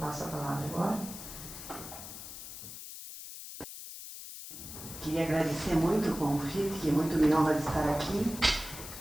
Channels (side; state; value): left; noise; hiss, 11 dB below the sound